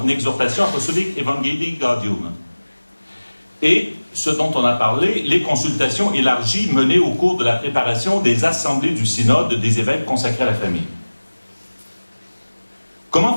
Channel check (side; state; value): both; inverted; correlation -1.00